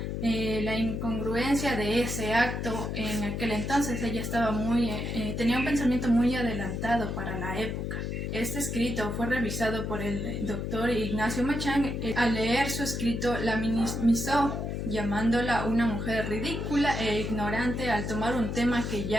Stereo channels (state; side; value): noise; left; hum, 3 dB below the sound